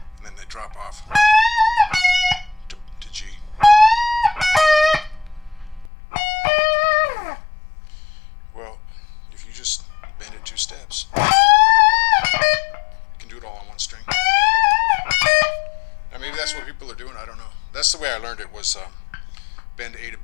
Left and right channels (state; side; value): drops out; right; at 5.9 s